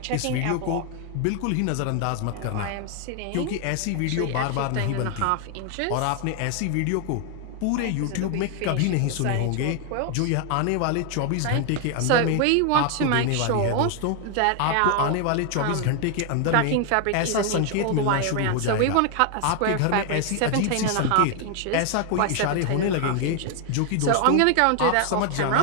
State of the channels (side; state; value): both; different; correlation 0.00